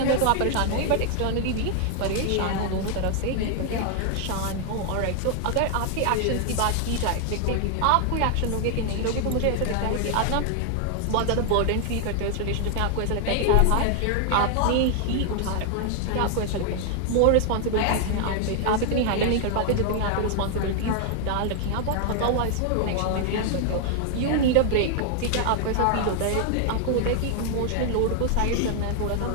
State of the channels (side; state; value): both; different; correlation 0.00